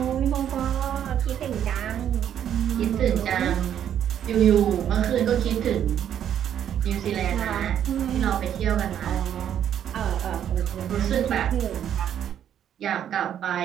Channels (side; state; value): left; quieter; 9.8 dB